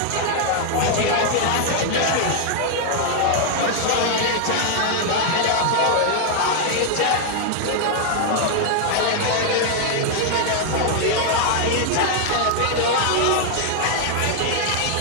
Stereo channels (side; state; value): both; different; correlation 0.00